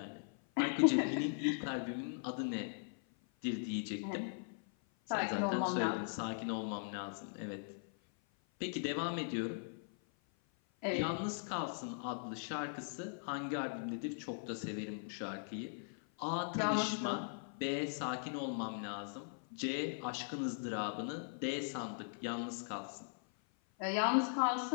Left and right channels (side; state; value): right; silent; 51 dB below the other